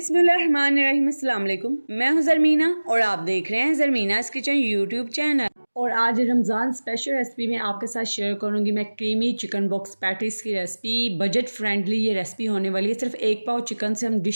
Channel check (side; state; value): both; inverted; correlation -1.00